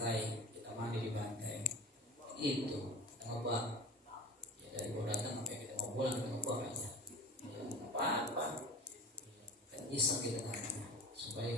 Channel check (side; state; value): both; normal; correlation 0.36